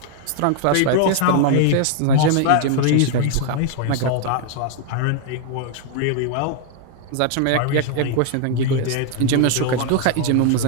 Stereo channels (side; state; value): both; different; correlation 0.00